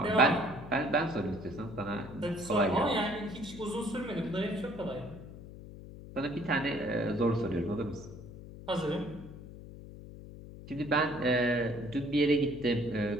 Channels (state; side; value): noise; left; hum, 14 dB below the sound